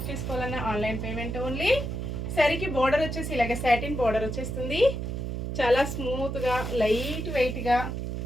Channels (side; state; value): right; noise; hum, 4 dB below the sound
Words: చేసుకోవాలన్నా ఆన్లైన్ పేమెంట్ ఓన్లీ. శారీకి బోర్డర్ వచ్చేసి ఇలాగ సాటిన్ బోర్డర్ వచ్చేస్తుంది. చాలా స్మూత్గా లైట్ వెయిట్గా